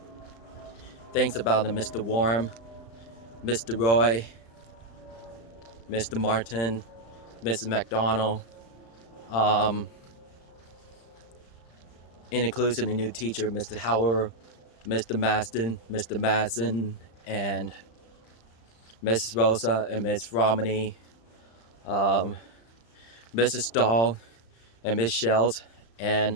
things about the Mr. Warm, Mr. Roy, Mr. Martin, Mrs. McDonald, and includes a new teacher, Mr. Howard, Mr. Maston, Mr. Madsen, and Mrs. Rosa and Miss Romney, Mrs. Dahl and Miss Schelt, and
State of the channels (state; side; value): late; right; 35 ms